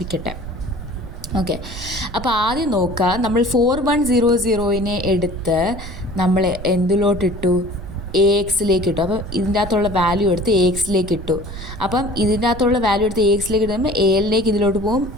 ഓക്കെ, അപ്പോൾ ആദ്യം നോക്കുക, നമ്മൾ 4100നെ എടുത്ത് നമ്മൾ എന്തിലോട്ടിട്ടു? AXലേക്ക് ഇട്ടു. അപ്പം ഇതിൻ്റെ അകത്തുള്ള വാല്യൂ എടുത്ത് AXലേക്ക് ഇട്ടു. അപ്പം ഇതിൻ്റെ അകത്തുള്ള വാല്യൂ എടുത്ത് AXലേക്ക് ഇടുമ്പോൾ ALലേക്ക് ഇതിലോട്ട് പോകും,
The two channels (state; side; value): noise; right; rumble, 11 dB below the sound